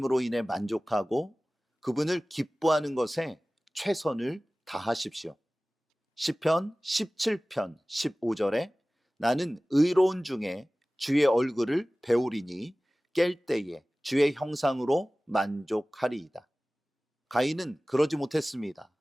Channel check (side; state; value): both; normal; correlation 0.98